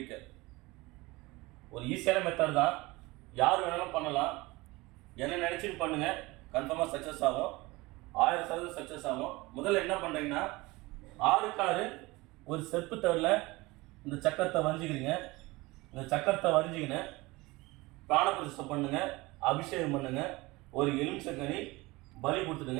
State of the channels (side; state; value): left; quieter; 21.9 dB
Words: ஒரு ஈஸியான மெத்தட் தான், யார் வேணாலும் பண்ணலாம். என்ன நினச்சிட்டு பண்ணுங்க, கன்ஃபார்மாக சக்ஸஸ் ஆகும். 1000% சக்ஸஸ் ஆகும். முதல்ல என்ன பண்ணுறீங்கன்னா, 6 ஒரு செப்பு தவிர இந்த சக்கரத்தை வரைஞ்சிக்கிறீங்க. இந்த சக்கரத்தை வரைஞ்சிக்கின்னு பிராணபிரதிஷ்டை பண்ணுங்க, அபிஷேகம் பண்ணுங்க. ஒரு எலுமிச்சங்கனி பலி